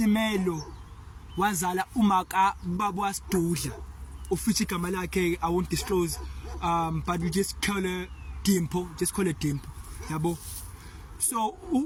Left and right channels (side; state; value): both; identical; correlation 1.00